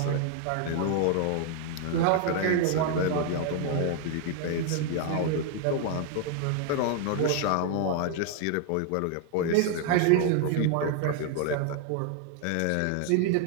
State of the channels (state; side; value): different; both; correlation 0.00